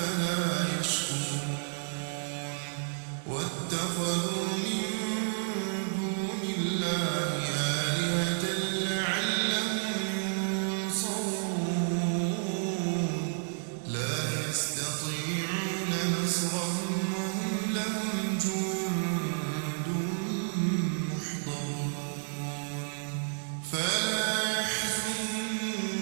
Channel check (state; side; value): silent; left; digital silence